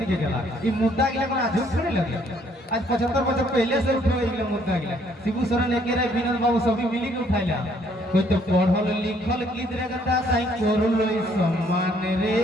गेला ई मुद्दा गिला कोन आजू थोड़े लगे आज 75 बछर पहले से उठो इले मुद्दा गिला शिबू सरन एकेरे विनोद बाबू सभी मिली के उठाइला कोई तो पढ़ल लिखल किधर गदा साई करलो सम्मान रे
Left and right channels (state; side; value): normal; both; correlation 0.65